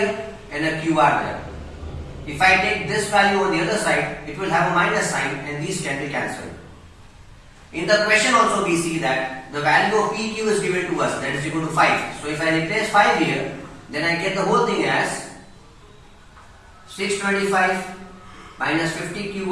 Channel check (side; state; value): both; identical; correlation 1.00